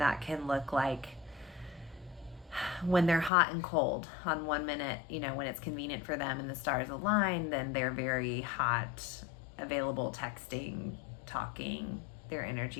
that can look like when they're hot and cold. On 1 minute, when it's convenient for them and the stars align, then they're very hot, available, texting, talking, their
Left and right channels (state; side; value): drops out; right; at 3.3 s